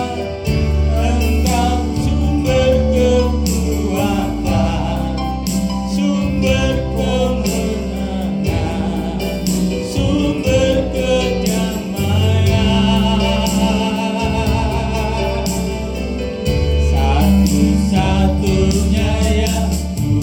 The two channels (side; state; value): both; identical; correlation 1.00